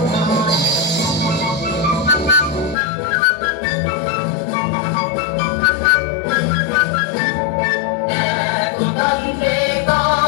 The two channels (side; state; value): right; drops out; at 2.8 s